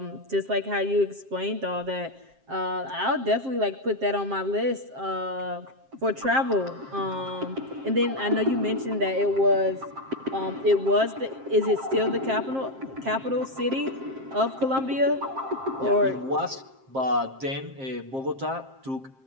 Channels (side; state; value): left; late; 7.5 ms